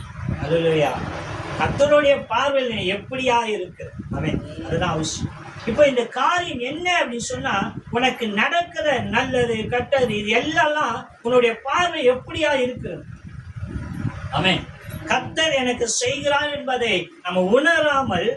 அல்லேலூயா. கர்த்தருடைய பார்வையில் எப்படியா இருக்கு அவன், அதுதான் அவசியம். இப்போ இந்த காரியம் என்ன அப்படின்னு சொன்னா, உனக்கு நடக்கிற நல்லது கெட்டது இது எல்லாம் உன்னுடைய பார்வை எப்படியா இருக்கிறது. ஆமென். கர்த்தர் எனக்கு செய்கிறான் என்பதை நம்ம உணராமல்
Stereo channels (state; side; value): identical; both; correlation 1.00